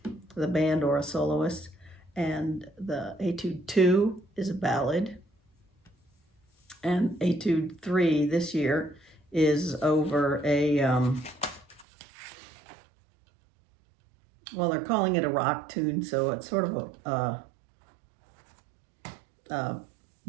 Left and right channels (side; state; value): left; drops out; at 11.9 s